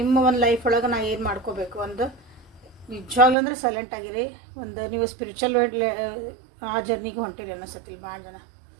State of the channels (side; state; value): left; drops out; at 3.4 s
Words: ಒಂದು ಲೈಫ್ ಒಳಗೆ ನಾ ಏನು ಮಾಡ್ಕೋಬೇಕು ಒಂದು ನಿಜವಾಗ್ಲೂ ಅಂದರೆ ಸೈಲೆಂಟ್ ಆಗಿರಿ. ಒಂದು ನೀವು ಸ್ಪಿರಿಚುವಲ್ ಆ ಜರ್ನಿಗೆ ಹೊಂಟಿರಿ ಅನ್ನಿಸತ್ತಿಲ್ಲ ಭಾಳ ಜನ.